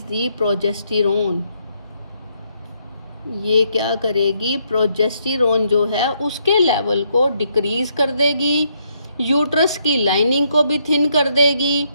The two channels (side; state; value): both; inverted; correlation -0.74